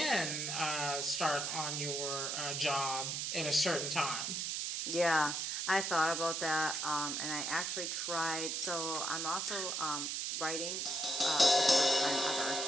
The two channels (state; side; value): noise; right; hiss, 1 dB below the sound